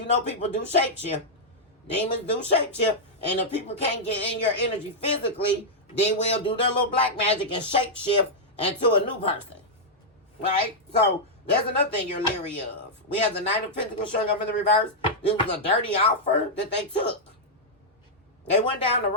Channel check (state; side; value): normal; both; correlation -0.06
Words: people do shapeshift. Demons do shapeshift. And if people can't get in your energy physically, they will do their little black magic and shapeshift into a new person. Right? So, that's another thing you're leery of. We have the Knight of Pentacles showing up in the reverse. This was a dirty offer that they took. They went down the